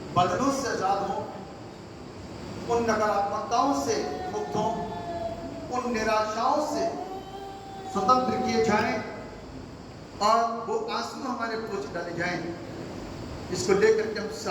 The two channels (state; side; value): identical; both; correlation 1.00